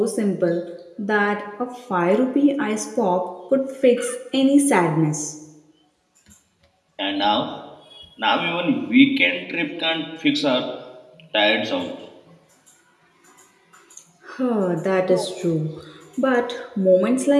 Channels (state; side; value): identical; both; correlation 1.00